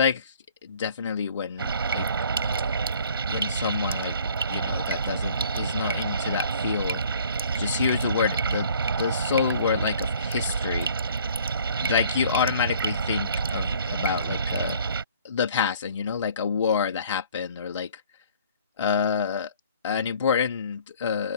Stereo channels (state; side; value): inverted; both; correlation -0.55